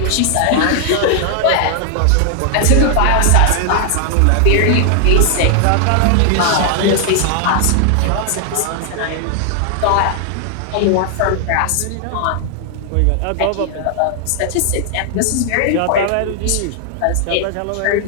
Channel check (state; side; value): different; both; correlation 0.00